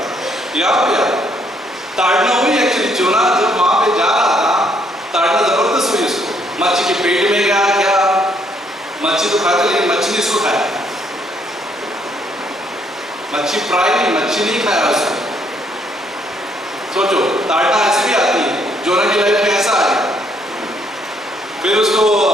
यहाँ पे ताड़ना हुई एक्चुअली। जोना जब वहां पे जा रहा था, ताड़ना जबरदस्त हुई उसको, मच्छी के पेट में गया क्या, मच्छी तो खाते लेकिन मच्छी नहीं उसको खाया, मच्छी फ्राई नहीं, मच्छी नहीं खाया उसको। सोचो ताड़ना ऐसे भी आती है, जोना की लाइफ में ऐसा आ गया, फिर उसको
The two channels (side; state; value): both; normal; correlation 0.69